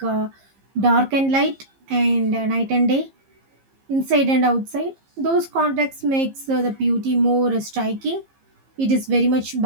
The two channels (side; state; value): left; late; 15 ms